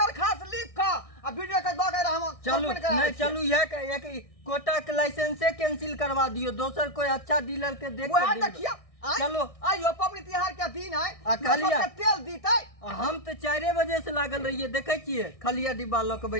लिख के आ वीडियो के दऽ के हम चलू सस्पेंड करा नहीं दै चलू यह कोटा के लाइसेंसे कैंसिल करवा दियो दोसर कोई अच्छा डीलर के देख वह के देखिया चलो। आइयो पबनी तिहार के दिन है आ कहलियै। सबके तेल दीतै हम तो 4 बजे से लागल रहिए देखे छियै खलिया डिब्बा लऽ के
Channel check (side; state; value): right; late; 1.6 ms